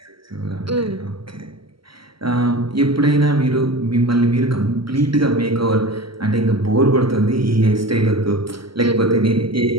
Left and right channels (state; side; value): late; left; 0.74 ms